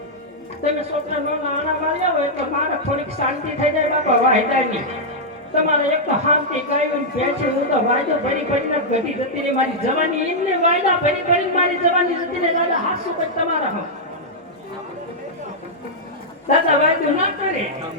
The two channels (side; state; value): both; normal; correlation -0.07